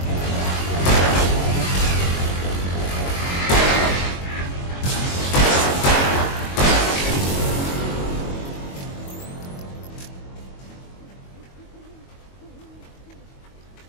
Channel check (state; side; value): late; right; 22 ms